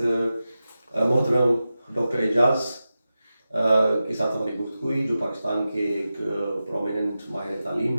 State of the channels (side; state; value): both; inverted; correlation -0.93